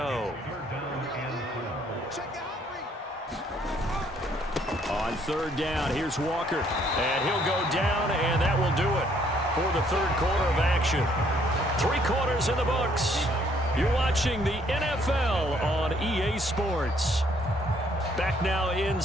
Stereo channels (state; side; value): normal; both; correlation 0.66